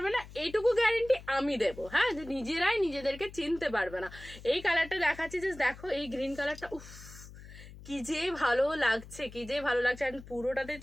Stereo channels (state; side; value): noise; left; hum, 17 dB below the sound